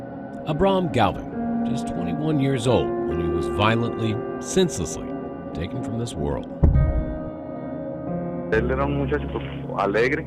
Abram Galvin, just 21 years old when he was violently, senselessly taken from this world.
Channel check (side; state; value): both; identical; correlation 1.00